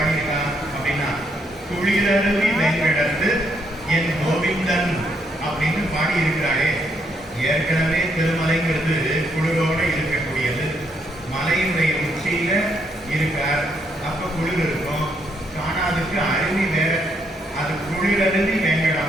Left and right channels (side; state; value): both; normal; correlation 0.74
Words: அப்படின்னா, குளிரருவி வெங்கடத்து என் கோவிந்தன் அப்படின்னு பாடி இருக்கிறாரே. ஏற்கனவே திருமலைங்கிறது குளிரோட இருக்கக்கூடியது. மலையினுடைய உச்சியில இருக்கார், அப்ப குளிர் இருக்கும். காணாதுக்கு அருவி வேற, அது குளிரருவி